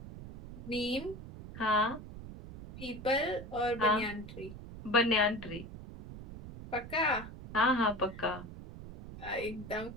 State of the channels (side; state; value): right; noise; rumble, 13 dB below the sound